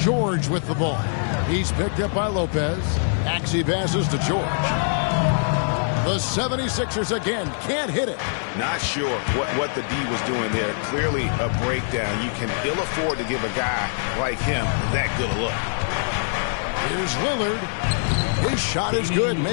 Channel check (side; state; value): right; silent; digital silence